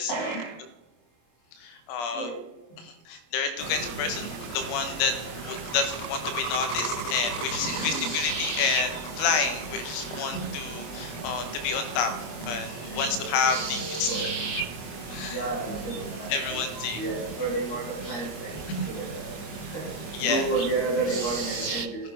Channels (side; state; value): right; late; 25 ms